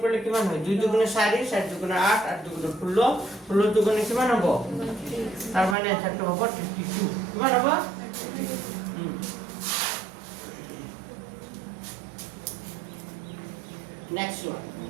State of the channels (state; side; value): drops out; left; at 5.8 s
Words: কৰিলে কিমান হয় 2 দুগুণে 4 4 দুগুণে 8 8 দুগুণে 16 16 দুগুণে কিমান হ'ব তাৰ মানে এনসাৰটো হ'ব 32 কিমান হ'ব নেক্সট ওয়ান